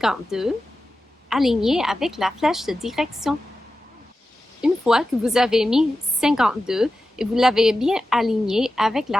alignée avec la flèche de direction. Une fois que vous avez mis 52 et vous l'avez bien aligné avec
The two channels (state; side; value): normal; both; correlation 0.93